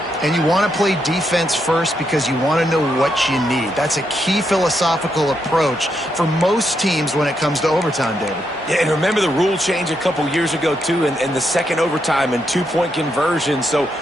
And you want to play defense first because you want to know what you need. That's a key philosophical approach for most teams when it comes to overtime, David. Yeah, and remember the rule change a couple years ago, too, and the second overtime and two-point conversion. So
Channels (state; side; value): normal; both; correlation 0.80